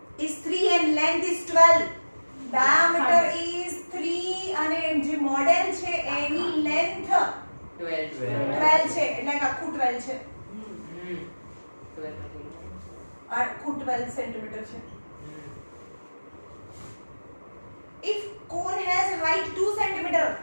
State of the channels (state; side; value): inverted; both; correlation -1.00